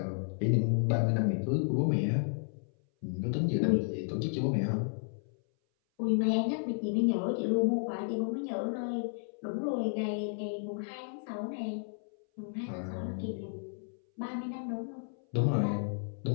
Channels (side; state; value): right; silent; 56 dB below the other